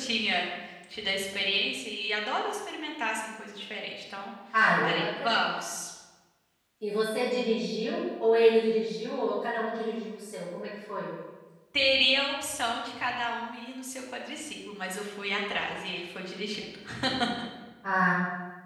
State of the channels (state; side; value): identical; both; correlation 1.00